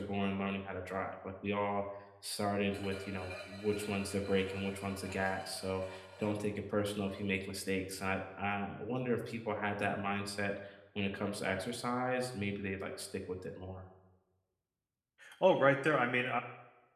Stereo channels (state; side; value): identical; both; correlation 1.00